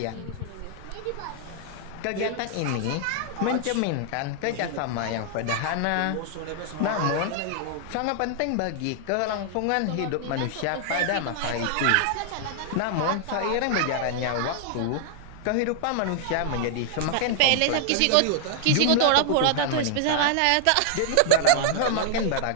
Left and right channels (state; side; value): different; both; correlation -0.01